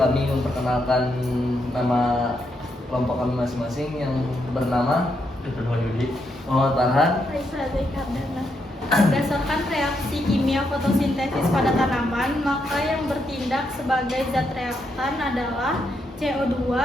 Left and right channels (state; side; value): normal; both; correlation 0.79